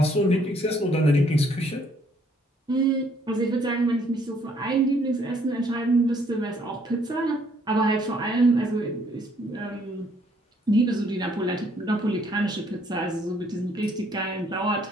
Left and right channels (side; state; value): both; normal; correlation 0.66